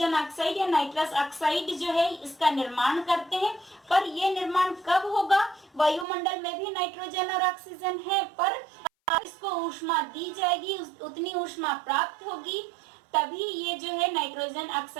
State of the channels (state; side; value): drops out; left; at 6.1 s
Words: ऑक्साइड या नाइट्रस ऑक्साइड जो है इसका निर्माण करते हैं। पर ये निर्माण कब होगा? वायुमंडल में भी नाइट्रोजन और ऑक्सीजन है, पर इसको ऊष्मा दी जाएगी, उतनी ऊष्मा प्राप्त होगी तभी ये जो है नाइट्रोजन